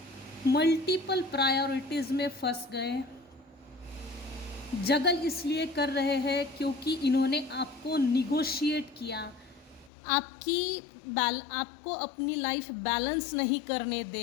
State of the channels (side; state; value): right; drops out; at 9.9 s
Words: मल्टीपल प्रायोरिटीज़ में फंस गए। जगल इसलिए कर रहे हैं क्योंकि इन्होंने आपको निगोशिएट किया, आपको अपनी लाइफ बैलेंस नहीं करने